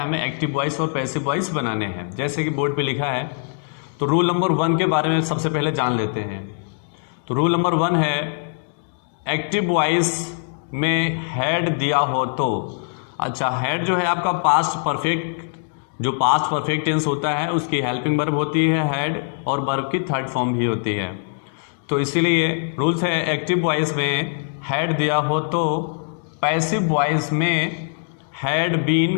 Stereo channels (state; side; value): silent; right; digital silence